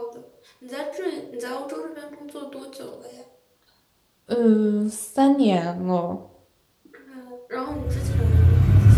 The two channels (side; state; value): both; identical; correlation 1.00